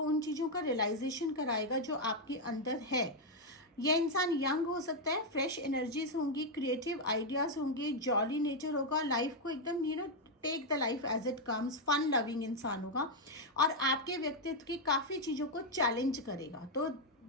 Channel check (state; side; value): normal; both; correlation 0.01